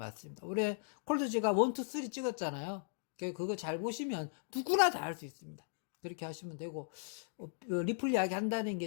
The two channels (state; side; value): silent; right; digital silence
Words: 우리 콜드 지갑 1, 2, 3 찍었잖아요. 그거 잘 보시면 누구나 다 할 수 있습니다. 그렇게 하시면 되고, 리플 이야기 한다는